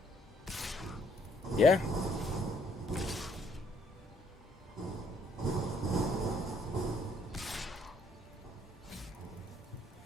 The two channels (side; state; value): both; normal; correlation 0.67